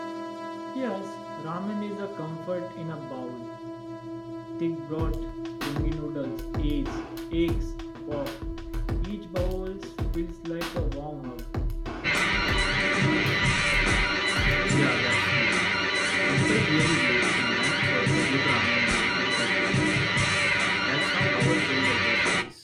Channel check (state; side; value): identical; both; correlation 1.00